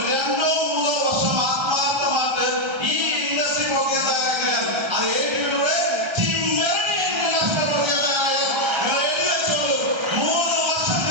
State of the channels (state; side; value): late; left; 1.3 ms